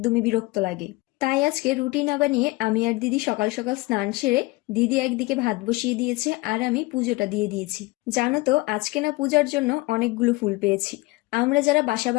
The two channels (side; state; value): right; quieter; 22.3 dB